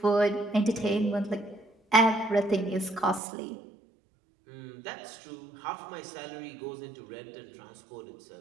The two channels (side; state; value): left; drops out; at 3.2 s